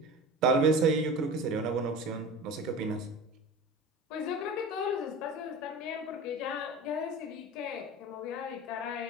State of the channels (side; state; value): both; normal; correlation 0.34